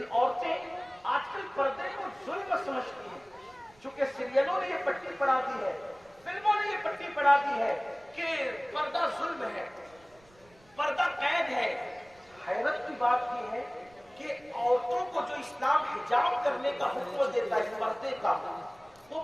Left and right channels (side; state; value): right; noise; rumble, 29 dB below the sound